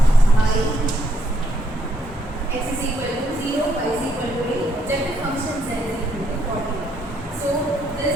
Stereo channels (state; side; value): normal; both; correlation 0.73